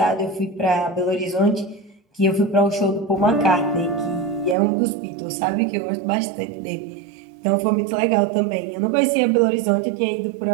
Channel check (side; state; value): left; drops out; at 4.5 s